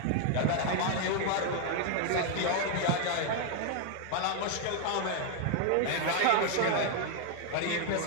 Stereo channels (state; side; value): different; both; correlation 0.00